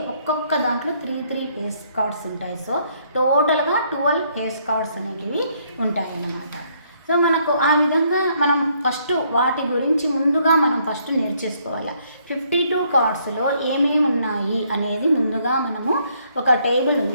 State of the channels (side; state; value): both; inverted; correlation -0.69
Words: ఒక్కొక్క దాంట్లో 3 ఫేస్ కార్డ్స్ ఉంటాయి. సో టోటల్గా 12 ఫేస్ కార్డ్స్ అనేటివి ఉంటాయి అన్నమాట. సో మనకు ఆ విధంగా మనం ఫస్ట్ వాటి గురించి ముందుగా మనం ఫస్ట్ నేర్చేసుకోవాలి. 52 కార్డ్స్లో ఏమేమి ఉన్నాయి అనేది ముందుగా మనము ఒక టేబుల్